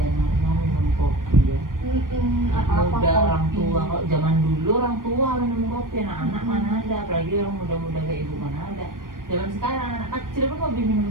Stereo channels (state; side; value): late; left; 0.90 ms